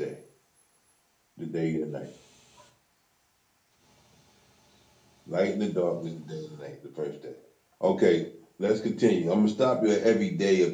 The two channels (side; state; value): both; identical; correlation 1.00